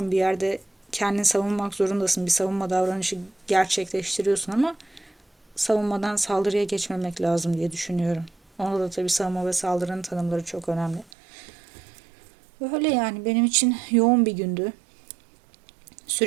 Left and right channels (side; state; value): left; drops out; at 11.1 s